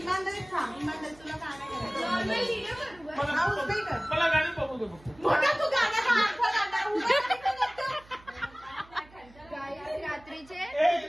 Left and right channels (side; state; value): right; noise; hum, 24 dB below the sound